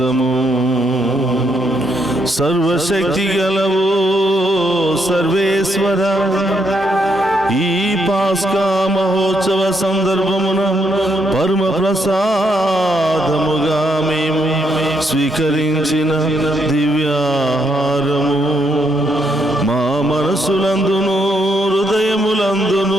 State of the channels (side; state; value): both; normal; correlation 0.76